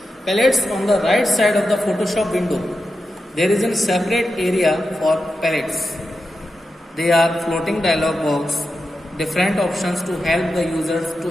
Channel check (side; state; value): both; normal; correlation 0.89